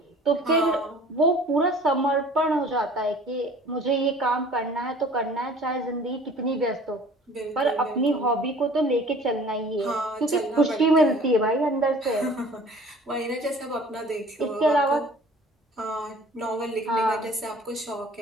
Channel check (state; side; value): normal; both; correlation 0.48